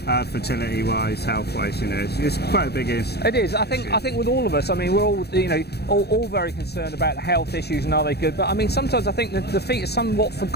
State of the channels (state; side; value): late; right; 0.47 ms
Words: Fertility-wise, health-wise, it's quite a big issue. It is. I think with all of us, I mean, we're all, all very concerned about health issues and are they good. But I mean, sometimes I think that the feet are somewhat